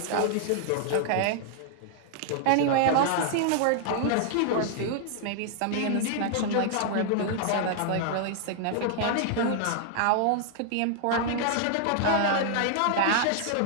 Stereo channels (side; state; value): both; different; correlation 0.00